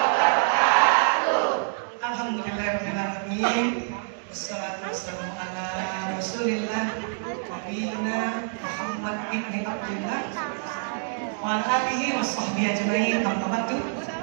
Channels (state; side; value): silent; left; digital silence